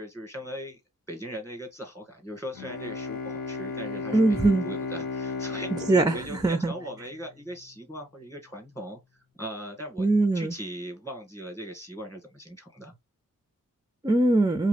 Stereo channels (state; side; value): normal; both; correlation 0.75